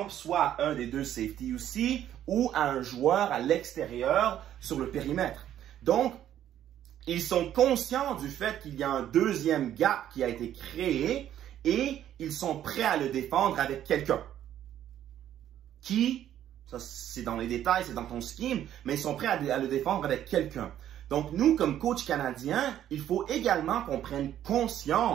soit à un des 2 safety aussi, ou à un joueur à l'extérieur sur le périmètre. Donc, ils sont conscients du fait qu'il y a un 2e gap qui a été créé et ils sont prêts à le défendre avec quelqu'un. Qui, ça c'est dans les détails, c'est dans ton scheme, mais ils sont prêts à le défendre avec quelqu'un. Donc nous, comme coach canadien, il faut également qu'on prenne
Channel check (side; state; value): left; quieter; 11.2 dB